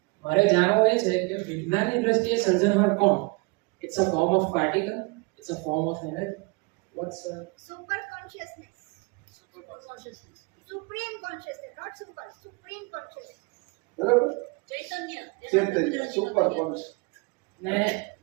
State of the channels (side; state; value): left; quieter; 28.8 dB